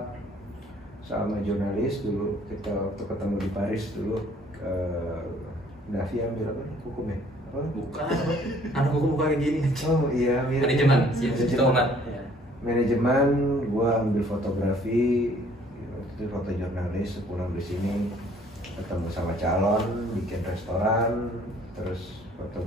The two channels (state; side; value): normal; both; correlation 0.58